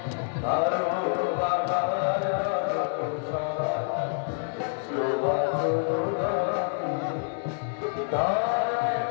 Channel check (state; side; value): silent; right; digital silence